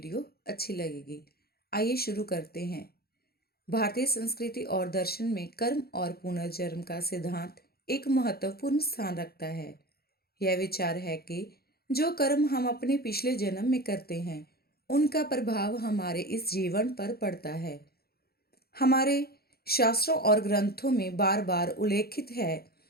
अच्छी लगेगी। आइए शुरू करते हैं। भारतीय संस्कृति और दर्शन में कर्म और पुनर्जन्म का सिद्धांत एक महत्वपूर्ण स्थान रखता है। यह विचार है कि जो कर्म हम अपने पिछले जन्म में करते हैं, उनका प्रभाव हमारे इस जीवन पर पड़ता है। हमारे शास्त्रों और ग्रंथों में बार बार उल्लेखित है।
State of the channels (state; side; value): late; right; 0.45 ms